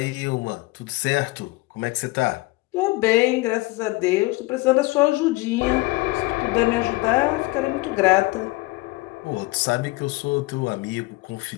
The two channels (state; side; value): quieter; right; 22.3 dB